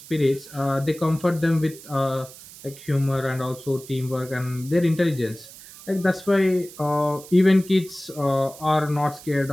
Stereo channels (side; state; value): right; noise; hiss, 18 dB below the sound